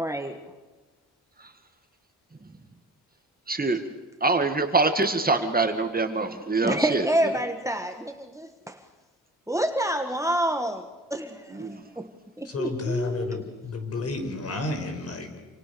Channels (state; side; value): normal; both; correlation 0.42